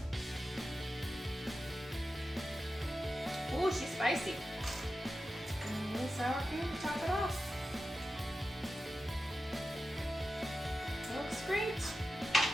Ooh, she's spicy. And a little sour cream to top it off. Looks great.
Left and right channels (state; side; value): normal; both; correlation 0.92